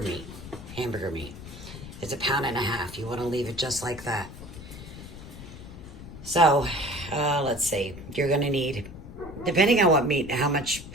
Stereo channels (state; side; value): noise; left; rumble, 14 dB below the sound